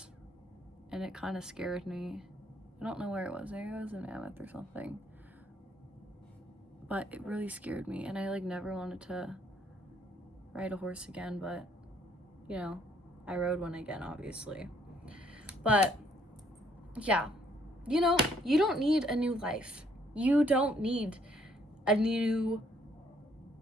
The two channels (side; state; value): both; normal; correlation 0.67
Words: and it kind of scared me. I don't know where it was. Maybe it was in Mammoth or something. But it really scared me, and I like never wanted to ride a horse again. But you know, I rode one again, obviously. But yeah, you know, you don't need a new life. You don't need a new